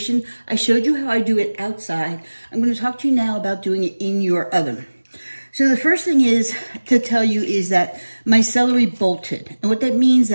I showed you how I do it outside. I'm going to talk to you now about doing it in your oven. So the first thing is to tell you is that my celery bolted, and what that means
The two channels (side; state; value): both; inverted; correlation -1.00